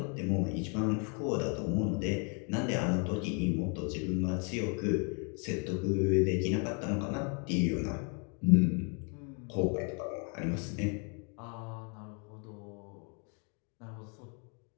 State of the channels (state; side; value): quieter; right; 37.2 dB